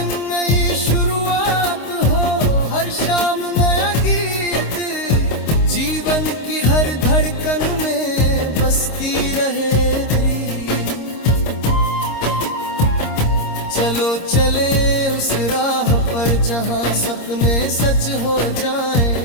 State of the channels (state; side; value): late; right; 26 ms